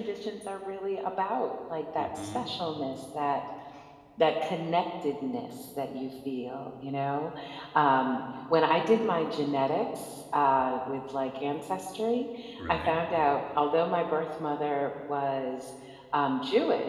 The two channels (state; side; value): identical; both; correlation 1.00